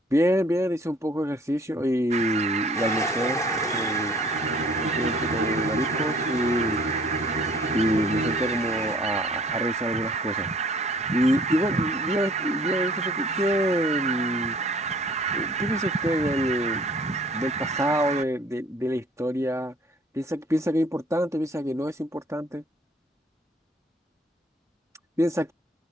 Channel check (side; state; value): both; normal; correlation 0.55